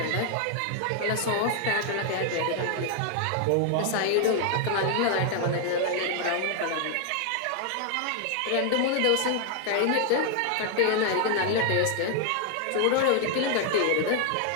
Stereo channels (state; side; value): different; both; correlation 0.00